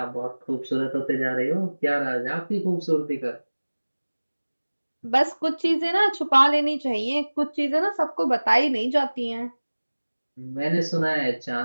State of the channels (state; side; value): inverted; both; correlation -1.00